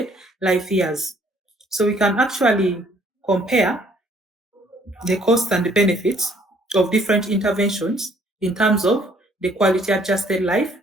life years. So we can actually compare the costs and the benefits of different interventions in terms of the quality adjusted life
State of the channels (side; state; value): both; normal; correlation 0.62